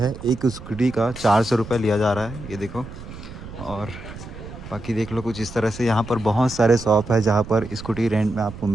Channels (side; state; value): right; noise; rumble, 13 dB below the sound